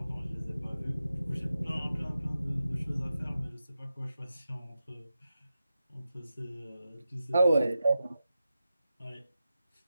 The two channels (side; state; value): both; inverted; correlation -0.91